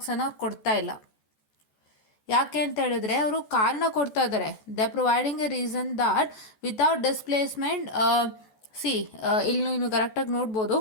ಕೊಡ್ತಾ ಇಲ್ಲ. ಯಾಕೆ ಅಂತ ಹೇಳಿದ್ರೆ ಅವರು ಕಾರಣ ಕೊಡ್ತಾ ಇದ್ದಾರೆ. They providing A reason that without displacement ಇಲ್ಲಿ ನೀವು ಕರೆಕ್ಟಾಗಿ ನೋಡ್ಬೋದು.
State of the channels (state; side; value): late; right; 14 ms